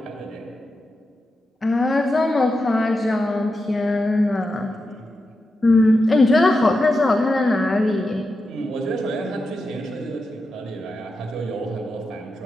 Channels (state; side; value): normal; both; correlation 0.89